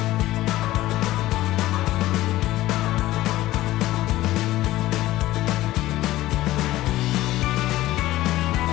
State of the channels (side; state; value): right; quieter; 16.1 dB